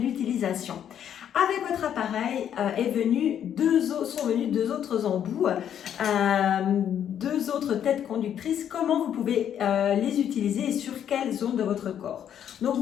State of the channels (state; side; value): quieter; right; 9.5 dB